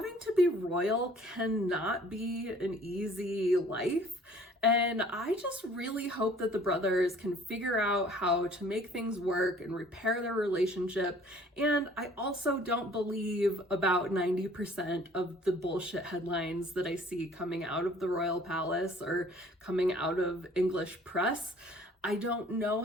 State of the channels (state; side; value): normal; both; correlation 0.54